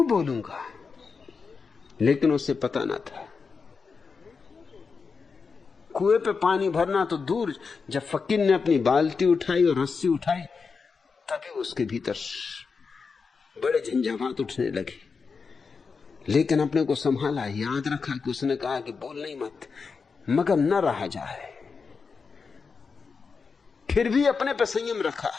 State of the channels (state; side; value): quieter; right; 5.1 dB